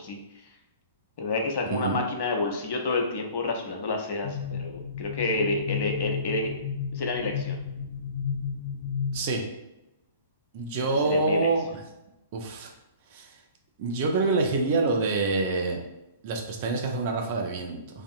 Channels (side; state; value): both; inverted; correlation -0.46